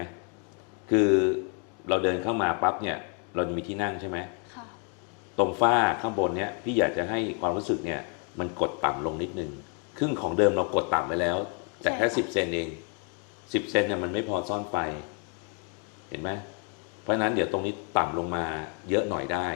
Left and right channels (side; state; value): right; quieter; 39.1 dB